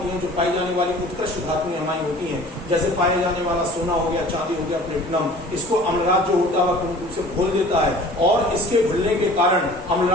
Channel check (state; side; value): normal; both; correlation 0.46